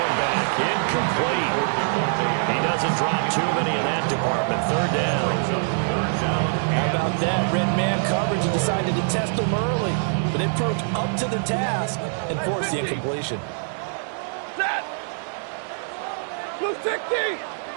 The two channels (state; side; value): silent; left; digital silence